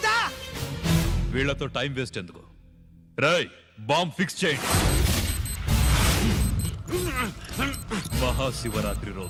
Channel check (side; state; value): both; identical; correlation 1.00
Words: వీళ్లతో టైం వేస్ట్ ఎందుకు? రై, బాంబ్ ఫిక్స్ చేయండి. మహాశివరాత్రి